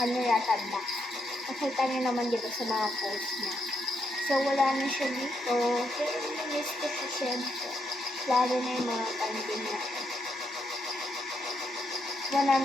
kanya yata black. Nakita niyo naman dito sa mga post niya. So, wala na siya dito. Kaya miss ko siya siyempre. Lalo na yung mga panding natin.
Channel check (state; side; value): normal; both; correlation 0.78